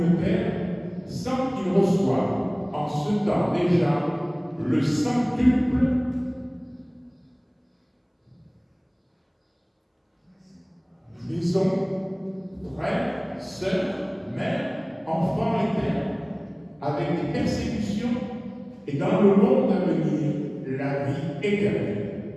terre, sans qu'ils reçoivent en ce temps déjà le centuple maison, frères, sœurs, mères, enfants et terres, avec des persécutions, et dans le monde à venir, la vie éternelle.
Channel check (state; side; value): identical; both; correlation 1.00